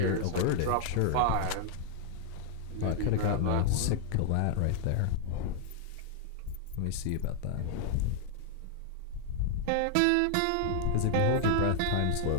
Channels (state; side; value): different; both; correlation 0.00